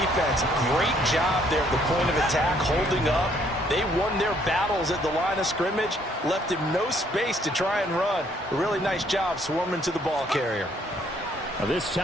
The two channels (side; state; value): both; normal; correlation 0.66